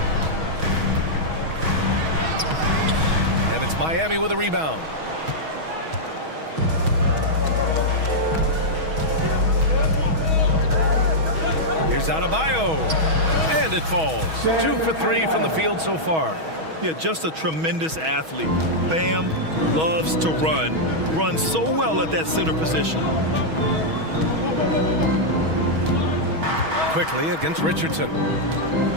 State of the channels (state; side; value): late; left; 6.3 ms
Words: And it's Miami with a rebound. Here's Adebayo. And it falls. 2 for 3 from the field so far. Yeah, just a tremendous athlete. Bam loves to run. Runs so well at that center position. Quickly against Richardson.